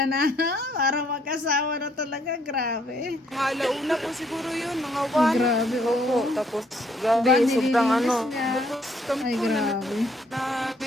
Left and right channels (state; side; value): normal; both; correlation 0.68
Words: na para magkasawa na talaga. Grabe. Mga alauna po siguro yun, mga 1. Grabe, Opo, oh. tapos Diba, grabe, sobrang nililinis niya. Kami Ay, po na grabe.